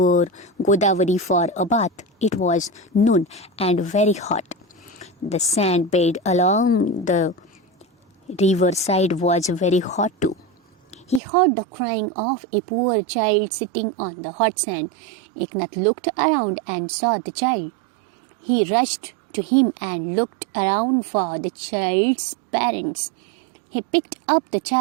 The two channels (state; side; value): drops out; left; at 11.2 s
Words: Godavari for a bath. It was noon and very hot. The sand bed along the riverside was very hot too. He heard the crying of a poor child sitting on the hot sand. Eknath looked around and saw the child. He rushed to him and looked around for the child's parents. He picked up the